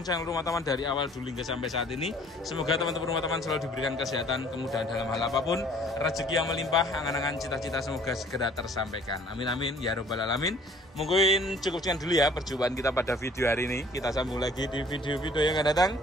channel rumah taman dari awal dulu hingga sampai saat ini. Semoga teman-teman rumah taman selalu diberikan kesehatan, kemudahan dalam hal apapun, rezeki yang melimpah, angan-angan cita-cita semoga segera tersampaikan. Amin amin ya robbal alamin. Mungkin cukup sekian dulu ya perjumpaan kita pada video hari ini. Kita sambung lagi di video-video yang akan datang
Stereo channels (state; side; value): normal; both; correlation 0.55